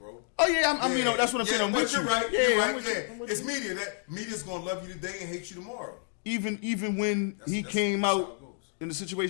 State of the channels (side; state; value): right; silent; 56 dB below the other